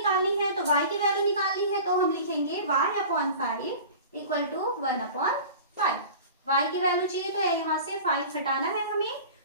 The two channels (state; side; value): inverted; both; correlation -0.39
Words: है, तो y की वैल्यू निकालनी है तो हम लिखेंगे y upon 5 equal to 1 upon 5। y की वैल्यू चाहिए तो यहाँ से 5 हटाना है हमें,